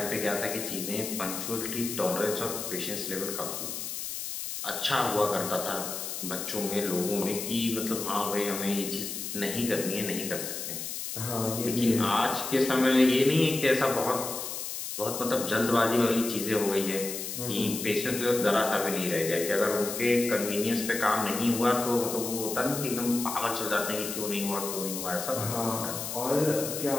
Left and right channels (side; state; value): left; noise; hiss, 6 dB below the sound